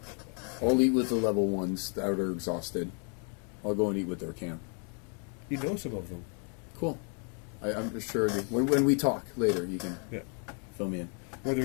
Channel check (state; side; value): quieter; right; 39.8 dB